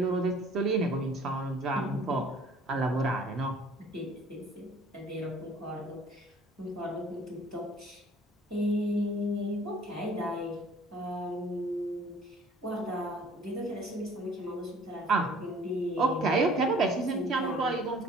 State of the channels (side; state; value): both; normal; correlation 0.53